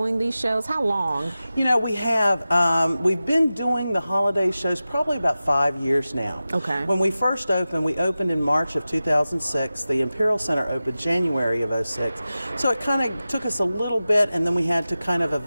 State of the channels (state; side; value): inverted; both; correlation -0.95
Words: these shows? How long? You know, we have, we've been doing the holiday shows probably about 5 years now. Okay. When we first opened, we opened in March of 2006. The Imperial Centre opened January of 06. So it kind of took us a little bit, and then we had to kind of